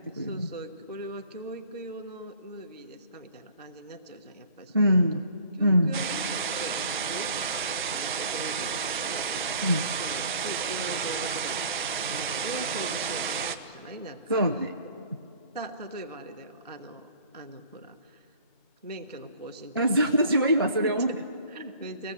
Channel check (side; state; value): both; inverted; correlation -0.51